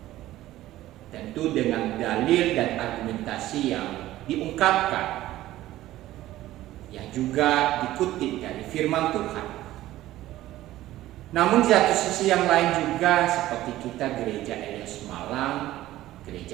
tentu dengan dalil dan argumentasi yang diungkapkan, yang juga dikutip dari firman Tuhan. Namun di satu sisi yang lain juga, seperti kita gereja Eleos Malang,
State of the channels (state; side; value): quieter; left; 15.1 dB